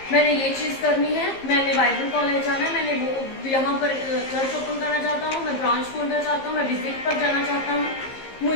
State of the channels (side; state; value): right; late; 15 ms